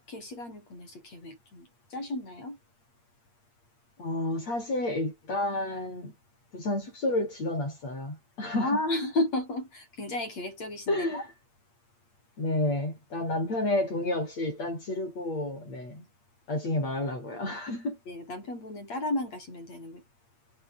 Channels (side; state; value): right; late; 8.5 ms